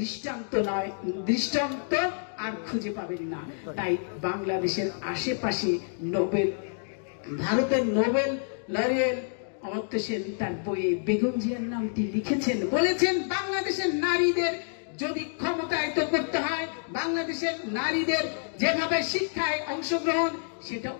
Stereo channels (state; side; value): silent; right; digital silence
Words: দৃষ্টান্ত আর খুঁজে পাবেন না। তাই বাংলাদেশের আশেপাশে ভারতের নোবেল লরিয়েল অমর্ত্য সেন তার বইয়ে বেগম জিয়ার নামটি লিখেছেন, বলেছেন বাংলাদেশের নারীদের যদি ক্ষমতায়িত করতে হয়, বাংলাদেশের নারীদের যেভাবে শিক্ষায় অংশগ্রহণ, সেটা